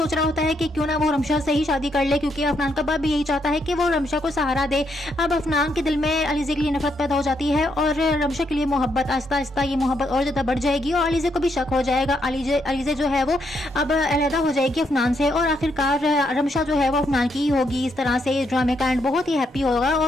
रहा होता है कि क्यों ना वो रमशा से ही शादी कर ले, क्योंकि अफनान का बाप भी यही चाहता है कि वो रमशा को सहारा दे। अब अफनान के दिल में अलीज़े के लिए नफरत पैदा हो जाती है और रमशा के लिए मोहब्बत, आहिस्ता आहिस्ता ये मोहब्बत और ज़्यादा बढ़ जाएगी और अलीज़े को भी शक हो जाएगा। अलीज़े जो है वो अब अलहदा हो जाएगी अफनान से और आखिरकार रमशा जो है वो अफनान की ही होगी। इस तरह से इस ड्रामे का एंड बहुत ही हैप्पी होगा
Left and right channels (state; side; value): normal; both; correlation 0.77